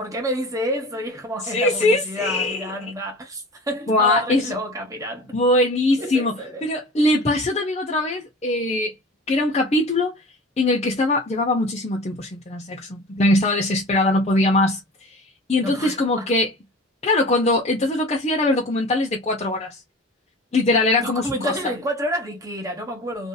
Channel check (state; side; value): normal; both; correlation 0.38